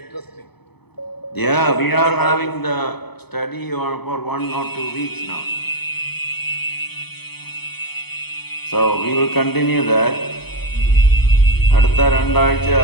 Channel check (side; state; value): right; late; 0.98 ms